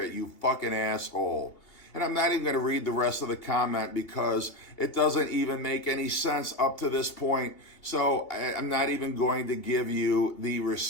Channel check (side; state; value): right; late; 2.8 ms